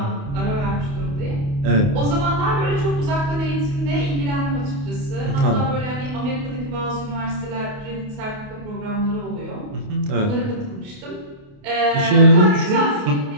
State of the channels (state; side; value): late; left; 28 ms